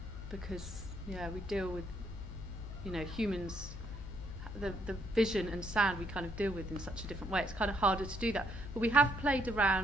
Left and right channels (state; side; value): normal; both; correlation 0.72